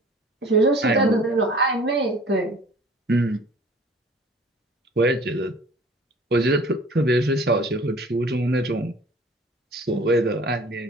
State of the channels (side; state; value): both; normal; correlation 0.48